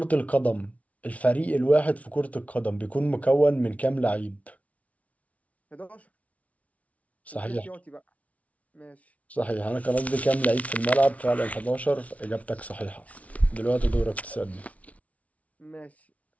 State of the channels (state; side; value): late; right; 0.067 ms